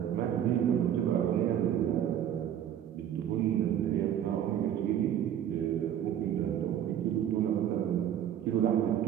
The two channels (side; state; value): left; quieter; 10.2 dB